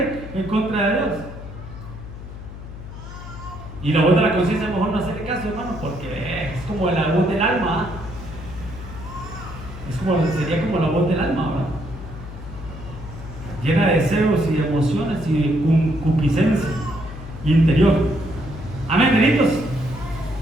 en contra de Dios. Y la voz de la conciencia, mejor no hacerle caso, hermano, porque es como la voz del alma. Sería como la voz del alma, ¿verdad? Llena de deseos y de emociones y de concupiscencia interior. Amén, benitos.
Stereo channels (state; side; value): noise; left; hum, 12 dB below the sound